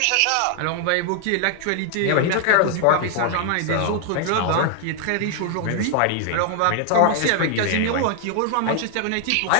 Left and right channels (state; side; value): different; both; correlation 0.00